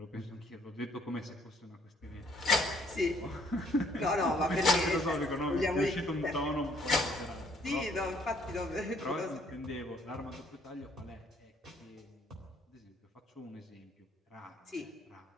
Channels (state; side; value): normal; both; correlation 0.64